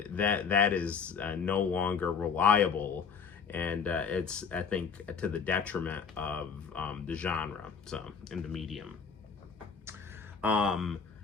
is no longer reliable, and it's, I think, to the detriment of the genre, so, in the medium.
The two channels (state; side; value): quieter; right; 6.1 dB